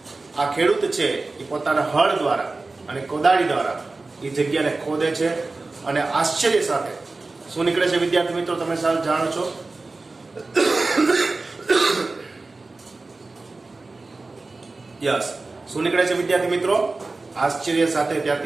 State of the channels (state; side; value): quieter; left; 3.5 dB